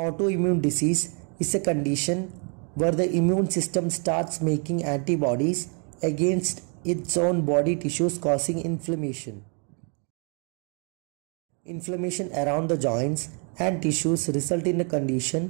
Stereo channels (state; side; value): quieter; left; 38.8 dB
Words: disease is a condition where the immune system starts making antibodies against its own body tissues causing inflammation. Inflammation around the joints and tissues result in a